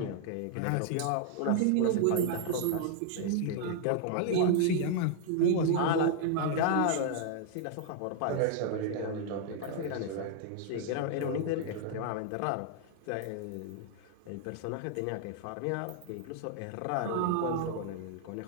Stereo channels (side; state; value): both; different; correlation 0.00